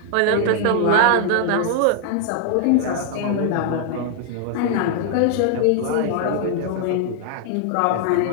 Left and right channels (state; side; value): different; both; correlation 0.00